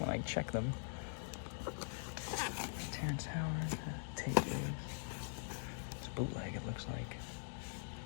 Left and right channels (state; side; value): silent; right; digital silence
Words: I check them. Terrence Howard. Take it. It's bootleg, it looks like.